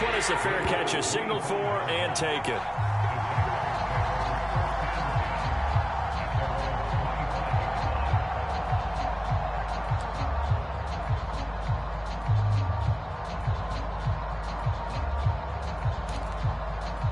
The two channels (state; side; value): identical; both; correlation 1.00